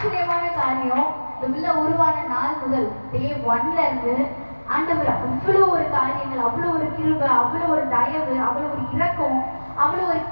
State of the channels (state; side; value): inverted; both; correlation -1.00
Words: பார்க்கணும், இந்த பிள்ளை உருவான நாள் முதல் டே 1ல இருந்து ஆண்டவர் அவ்வளோ ஒரு காரியங்கள், அவ்வளோ ஒரு கிருபை, அவ்வளோ ஒரு தயவு, அவ்வளோ ஒரு இரக்கம், அவ்வளோ ஒரு